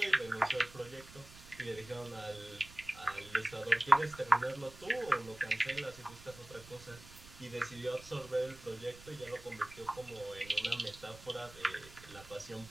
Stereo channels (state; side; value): noise; right; rumble, 18 dB below the sound